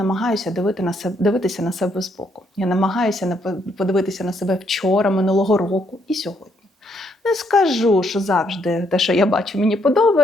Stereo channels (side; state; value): both; normal; correlation 0.72